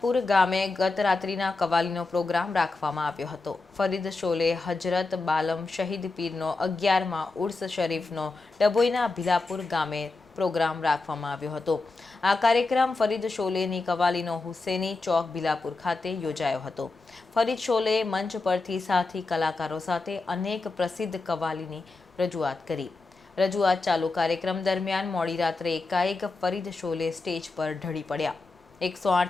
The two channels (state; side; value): quieter; right; 3.5 dB